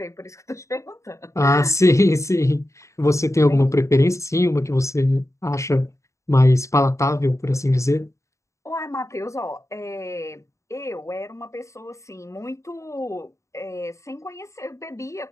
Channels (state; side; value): late; right; 0.15 ms